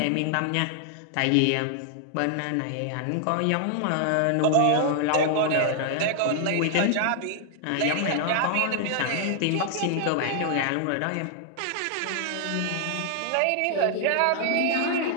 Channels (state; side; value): different; both; correlation 0.00